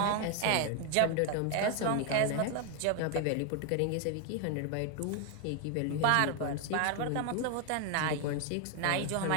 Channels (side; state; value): both; different; correlation 0.01